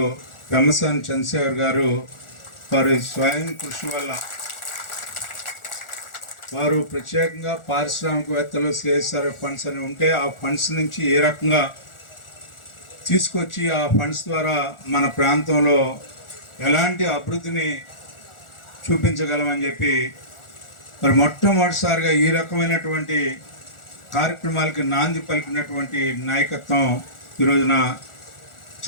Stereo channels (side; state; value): right; late; 1.4 ms